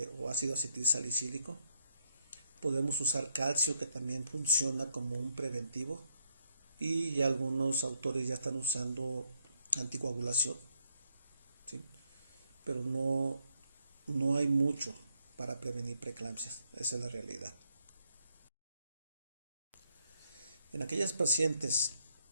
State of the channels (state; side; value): inverted; both; correlation -0.76